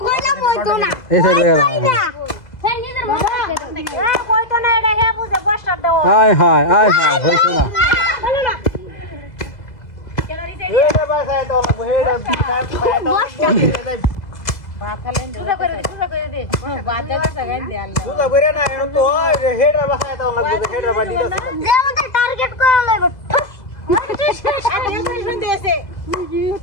কইলা কইতো না এই সাইডে হ্যাঁ নিজের মতো কইতো না এটা হে বুঝে বর্ষা দাও আয় হায় আয় হায় হইছে না বলো না যে আমাদের টার্গেট করা লাগবে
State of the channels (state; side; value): late; right; 2.0 ms